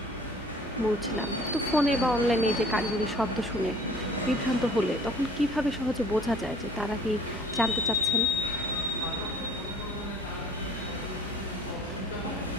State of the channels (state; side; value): normal; both; correlation 0.50